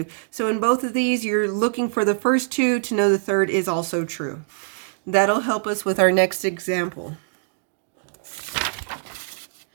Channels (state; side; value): silent; left; digital silence